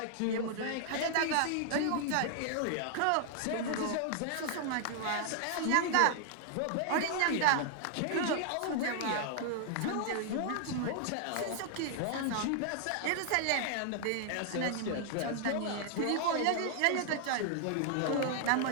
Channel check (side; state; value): both; different; correlation 0.00